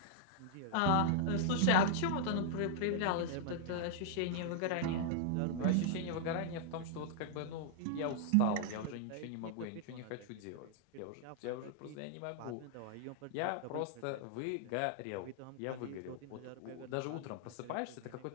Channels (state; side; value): different; both; correlation -0.01